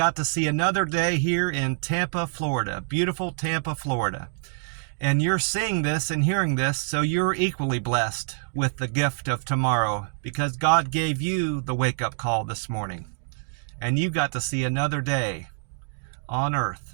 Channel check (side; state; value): left; silent; digital silence